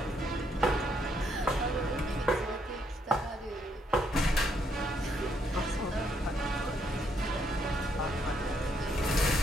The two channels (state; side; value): normal; both; correlation 0.74